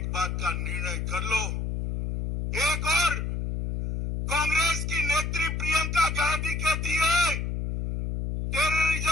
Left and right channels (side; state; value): left; noise; hum, 2 dB below the sound